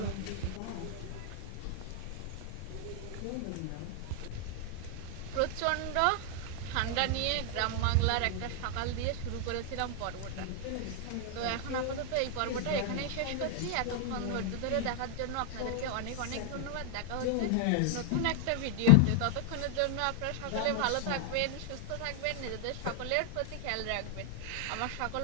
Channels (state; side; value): different; both; correlation 0.00